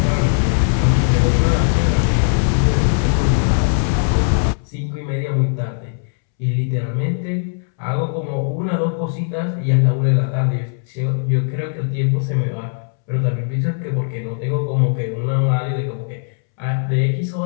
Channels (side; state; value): right; silent; 67 dB below the other